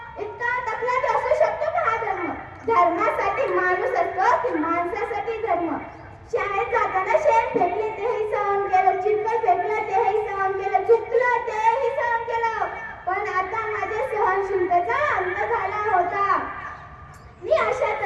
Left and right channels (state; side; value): identical; both; correlation 1.00